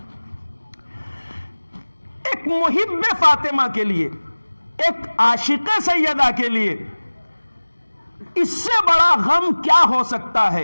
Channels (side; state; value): both; inverted; correlation -1.00